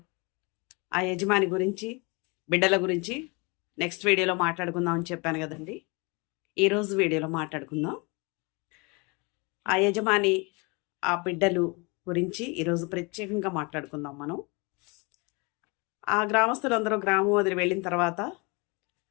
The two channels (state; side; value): quieter; right; 29.2 dB